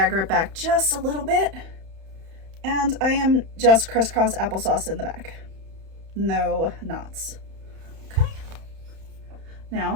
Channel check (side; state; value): left; late; 31 ms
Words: it back just a little bit, and I am just crisscross applesauce in the back. No knots. Okay,